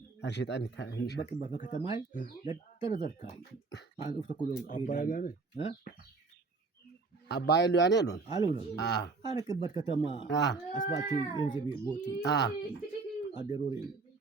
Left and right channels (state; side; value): quieter; left; 4.0 dB